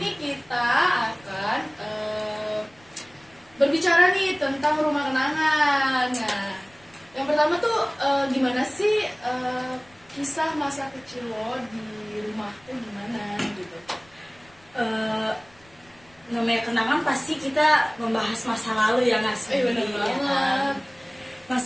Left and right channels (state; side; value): noise; left; rumble, 29 dB below the sound